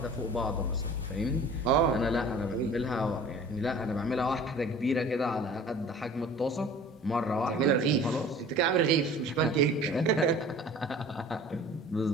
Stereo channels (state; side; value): normal; both; correlation 0.45